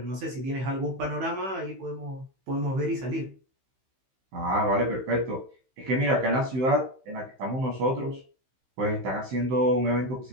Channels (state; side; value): late; left; 15 ms